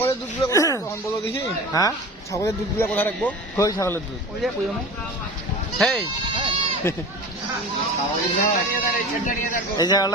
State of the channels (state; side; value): normal; both; correlation 0.35